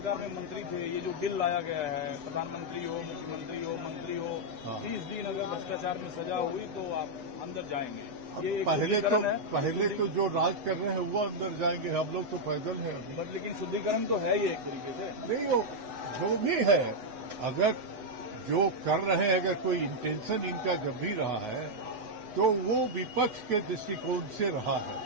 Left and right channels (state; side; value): late; left; 8.1 ms